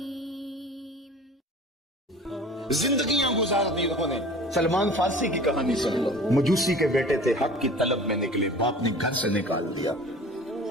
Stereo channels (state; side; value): normal; both; correlation 0.43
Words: زندگیاں گزار دی انہوں نے۔ سلمان فارسی کی کہانی سن لو۔ مجوسی کے بیٹے تھے، حق کی طلب میں نکلے، باپ نے گھر سے نکال دیا،